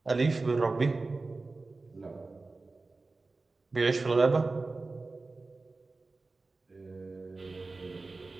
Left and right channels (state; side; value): quieter; left; 3.6 dB